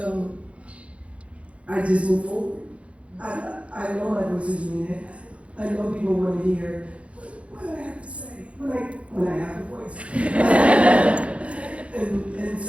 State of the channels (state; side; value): late; left; 0.062 ms